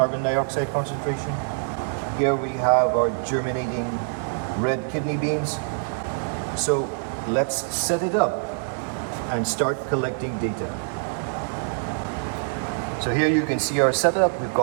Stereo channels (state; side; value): silent; left; digital silence